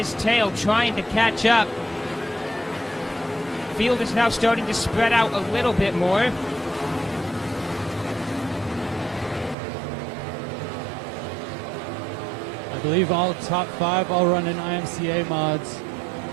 tail, trying to catch up. Field is now starting to spread out a little bit more. I believe all top 5 all run in IMCA mods.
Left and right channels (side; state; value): left; drops out; at 9.6 s